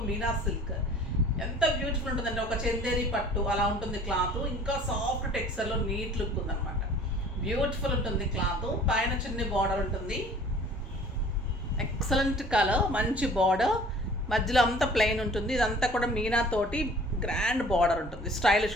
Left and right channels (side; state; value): both; normal; correlation 0.49